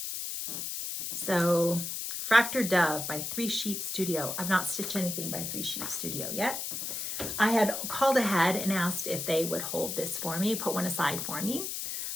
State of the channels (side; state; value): left; noise; hiss, 4 dB below the sound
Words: So Fractured Dove by 3 Sheep Studio. I've not stitched anything by 3 Sheep Studio yet. I had called ahead and asked if they would hold this for me, put one aside for me.